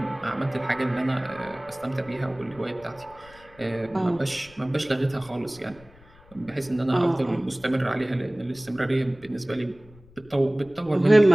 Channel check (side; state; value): left; noise; rumble, 25 dB below the sound